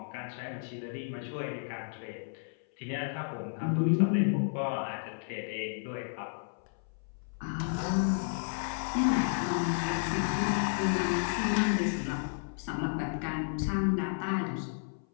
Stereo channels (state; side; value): silent; right; 56 dB below the other